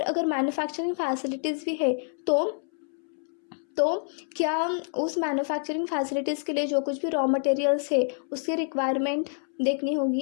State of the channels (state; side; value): silent; right; 60 dB below the other